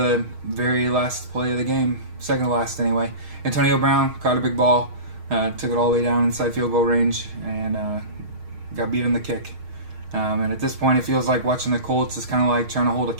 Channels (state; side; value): late; left; 6.4 ms